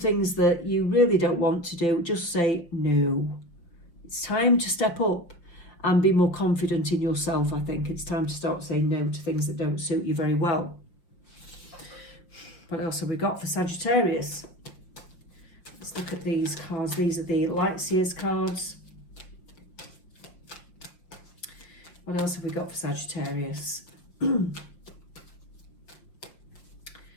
that you really don't want to do. Just say no. It's time to step up and be more confident in yourself, I think. It's time to start saying no to things that don't suit you very well. What else have we got for Sagittarius? Let's look at these cards. These are the Lightseers cards. What else have we got for Sagittarius?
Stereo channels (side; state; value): right; late; 5.9 ms